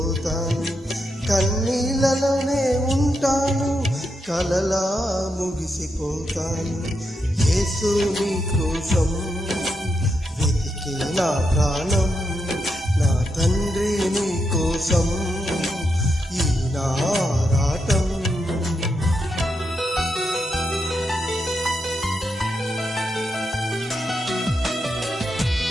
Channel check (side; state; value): both; normal; correlation 0.83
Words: కన్నీళ్ళలోనే ఉంటాను కలలా ముగిసిపోతాను. యేసు నీ కోసం వెతికే నా ప్రాణం, నా తండ్రి నీ కోసం ఈ నారాటం.